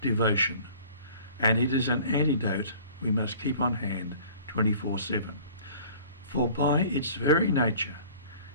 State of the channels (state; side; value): inverted; both; correlation -0.48